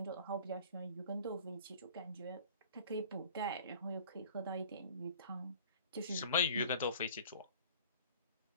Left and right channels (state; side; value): inverted; both; correlation -0.47